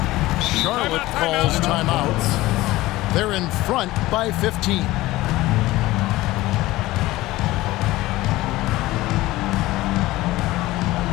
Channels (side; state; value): right; quieter; 18.0 dB